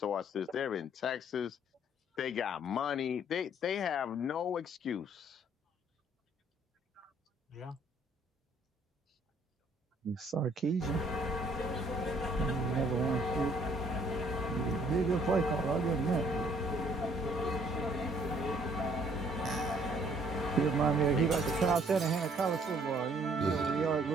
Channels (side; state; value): both; normal; correlation 0.62